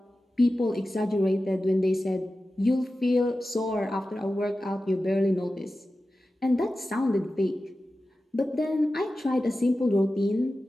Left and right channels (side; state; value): both; normal; correlation 0.94